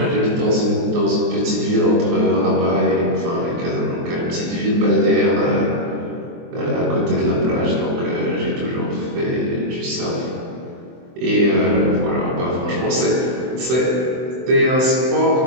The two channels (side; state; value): left; late; 23 ms